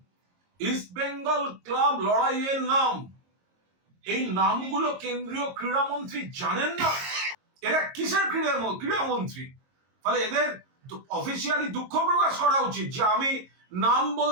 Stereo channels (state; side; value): late; left; 22 ms